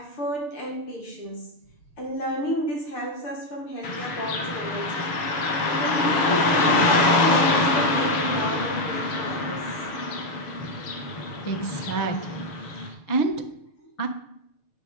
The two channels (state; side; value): late; right; 6.7 ms